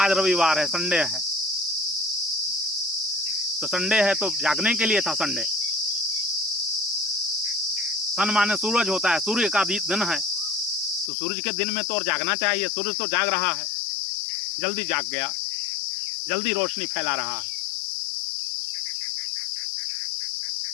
रविवार है, संडे है, तो संडे है तो जागने के लिए था संडे। सन माने सूरज होता है, सूर्य का दिन है, तो सूरज के दिन में तो और जागना चाहिए। सूरज तो जाग रहा है, जल्दी जाग गया, जल्दी रोशनी फैला रहा है।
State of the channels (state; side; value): drops out; right; at 11.1 s